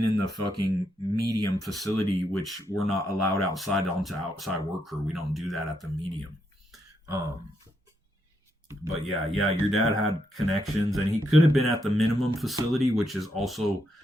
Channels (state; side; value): normal; both; correlation 0.79